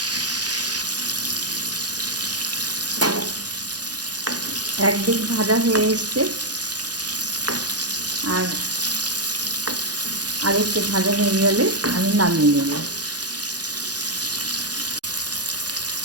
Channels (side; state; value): left; late; 0.69 ms